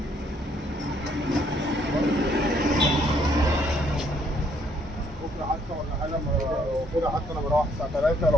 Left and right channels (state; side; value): normal; both; correlation 0.67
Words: بكره حتى ولا حاجه، لو كده حتى انا بروح الساعه 3،